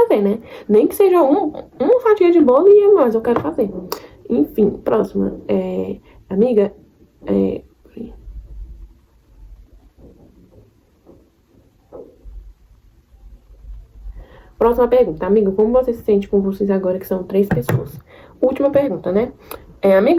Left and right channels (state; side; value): identical; both; correlation 1.00